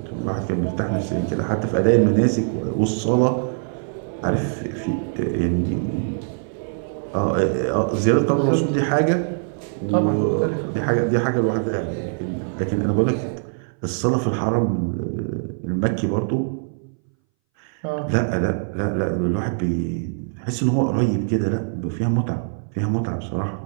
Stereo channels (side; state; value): left; silent; 61 dB below the other